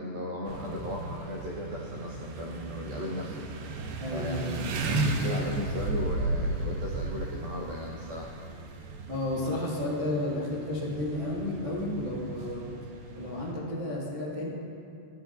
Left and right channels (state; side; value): late; left; 14 ms